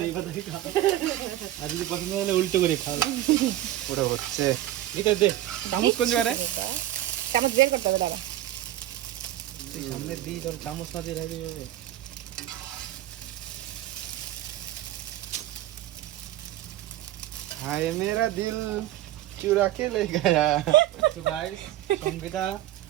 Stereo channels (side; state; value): left; quieter; 14.0 dB